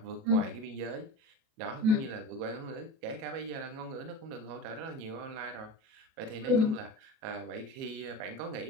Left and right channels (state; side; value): late; left; 37 ms